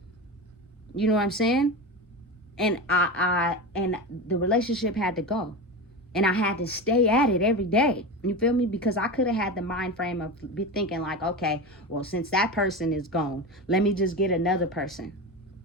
You know what I'm saying? And and the relationship had to go. And I had to stay at it every day. You feel me? Because I could have had the mind frame of be thinking like, okay, well, since that person is gone, let me just get another person.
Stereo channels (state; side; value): normal; both; correlation 0.23